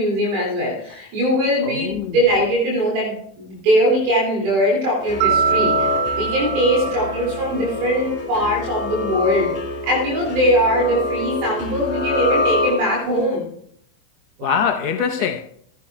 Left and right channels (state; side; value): late; left; 23 ms